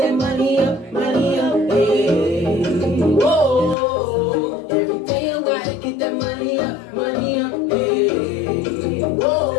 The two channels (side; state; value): right; drops out; at 3.8 s